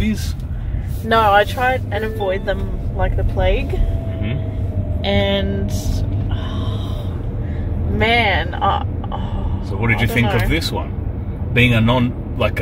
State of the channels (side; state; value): both; identical; correlation 1.00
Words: No, I tried and avoid them like the plague. Mm-hmm. And... man, so what did you think of this one? Being a